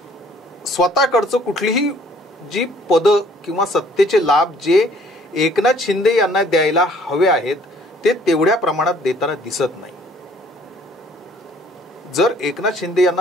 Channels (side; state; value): both; normal; correlation 0.59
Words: स्वतःकडचं कुठलीही जी पदं किंवा सत्तेचे लाभ जे एकनाथ शिंदे यांना द्यायला हवे आहेत ते तेवढ्या प्रमाणात देताना दिसत नाही. जर एकनाथ शिंदे